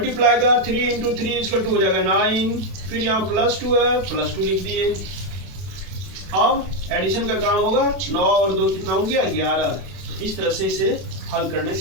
का 3 × 3 = 2 हो जाएगा 9। फिर यहाँ +2 है, +2 लिख दिए। अब एडिशन का काम होगा, 9 और 2 कितना हो गया 11। इस तरह से इसे हल करने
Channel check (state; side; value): late; left; 32 ms